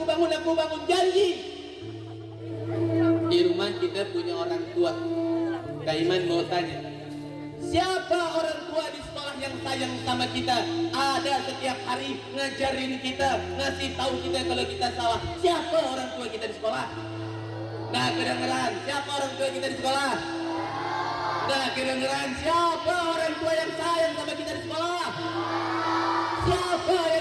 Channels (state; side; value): identical; both; correlation 1.00